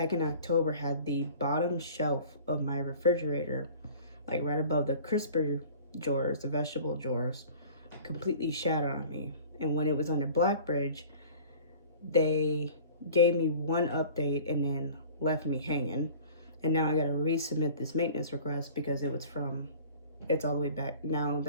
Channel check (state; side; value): inverted; both; correlation -0.45